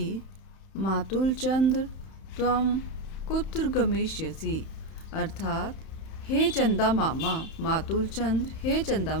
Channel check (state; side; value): late; right; 31 ms